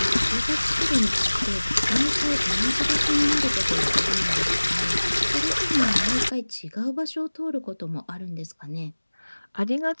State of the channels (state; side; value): inverted; both; correlation -1.00